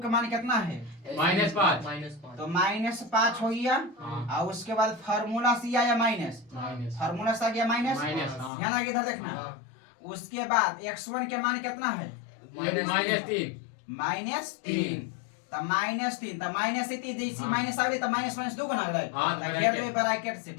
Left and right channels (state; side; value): drops out; right; at 8.5 s